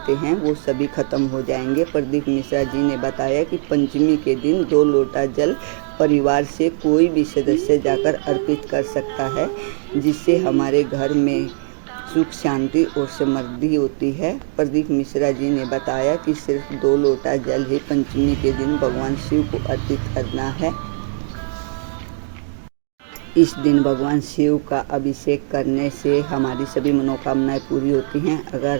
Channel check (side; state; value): left; silent; digital silence